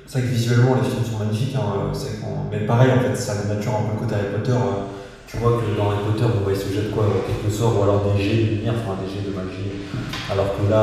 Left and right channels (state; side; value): identical; both; correlation 1.00